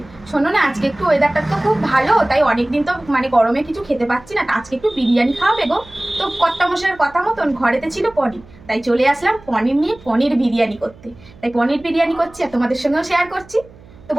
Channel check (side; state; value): right; noise; hum, 23 dB below the sound